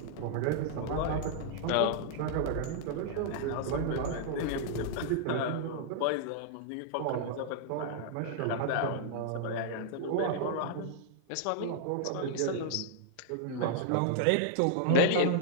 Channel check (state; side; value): different; both; correlation -0.01